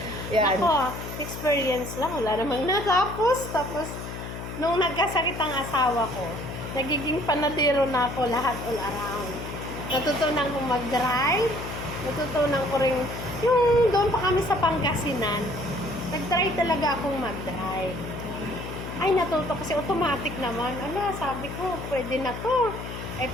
Yan. Ako, experience lang. Wala namang natapos. Tapos, nung nagkasakit ang asawa ko, nagiging panadero na ako lahat all around. Natutunan ko mag-drive. Natutunan ko rin, yung doon pa kami sa Pangasinan, nag-try talaga akong mag-drive. Ay, natuto kasi automatic naman. Sabi ko, pwede na to.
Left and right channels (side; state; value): left; noise; hum, 8 dB below the sound